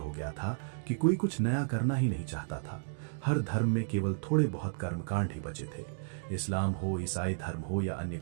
गया था कि कोई कुछ नया करना ही नहीं चाहता था। हर धर्म में केवल थोड़े बहुत कर्मकांड ही बचे थे। इस्लाम हो, ईसाई धर्म हो या अन्य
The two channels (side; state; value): left; silent; digital silence